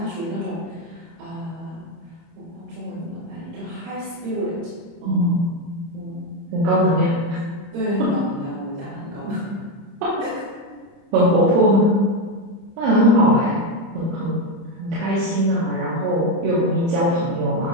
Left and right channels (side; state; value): left; late; 30 ms